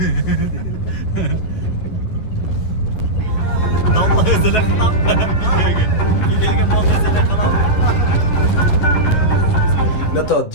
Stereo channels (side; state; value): right; late; 10 ms